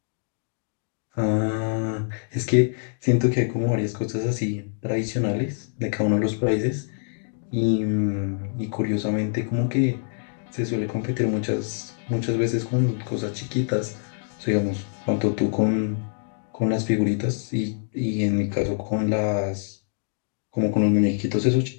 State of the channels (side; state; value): right; silent; digital silence